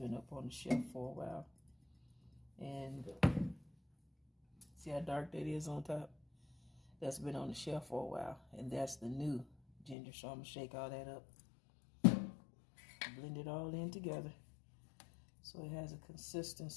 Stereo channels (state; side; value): drops out; right; at 10.0 s